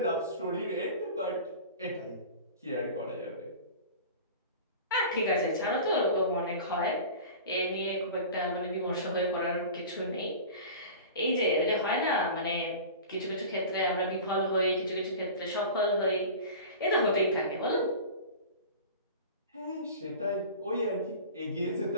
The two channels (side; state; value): both; inverted; correlation -0.36